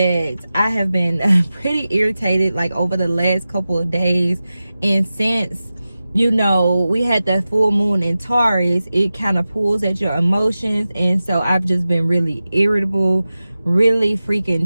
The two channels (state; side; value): inverted; both; correlation -0.95